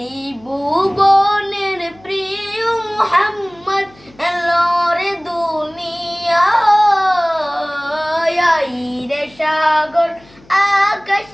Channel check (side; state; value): left; noise; hum, 27 dB below the sound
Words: প্রিয় মুহাম্মদ এলো রে দুনিয়ায়, সাগর